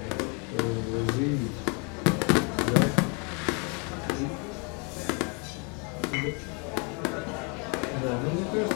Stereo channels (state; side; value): quieter; right; 34.4 dB